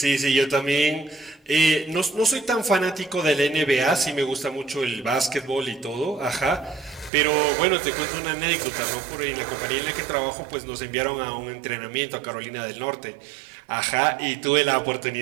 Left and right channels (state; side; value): drops out; left; at 7.1 s